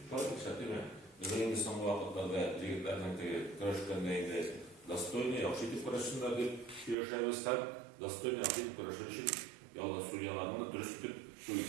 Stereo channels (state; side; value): drops out; left; at 7.0 s